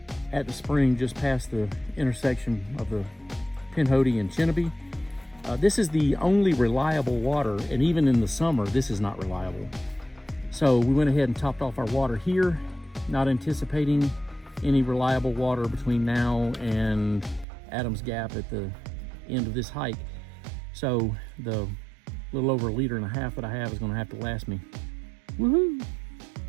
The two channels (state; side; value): drops out; left; at 17.4 s